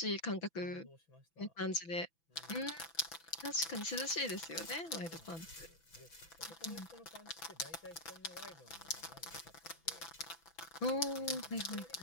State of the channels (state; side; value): late; right; 6.0 ms